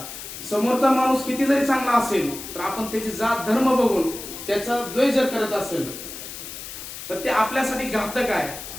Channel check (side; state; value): left; noise; hiss, 10 dB below the sound